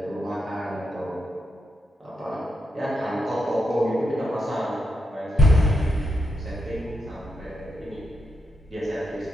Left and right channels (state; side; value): normal; both; correlation 0.83